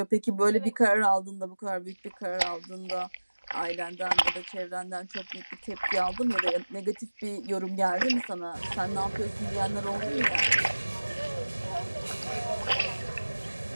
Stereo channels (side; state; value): both; inverted; correlation -1.00